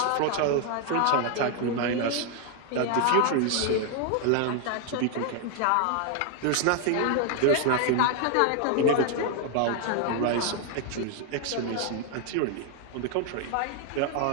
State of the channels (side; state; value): both; different; correlation 0.00